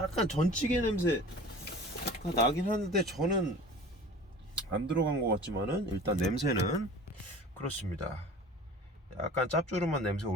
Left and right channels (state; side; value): normal; both; correlation 0.41